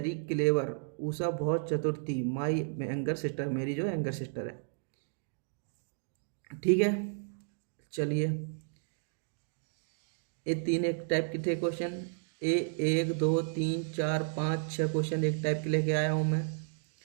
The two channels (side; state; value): left; silent; digital silence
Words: क्लेवर, उषा बहुत चतुर थी, माई यंगर सिस्टर, मेरी जो यंगर सिस्टर है, ठीक है। चलिए ये 3 एक टाइप के थे क्वेश्चन, 1 2 3 4 5 6 क्वेश्चन एक टाइप के लेके आया हूँ मैं,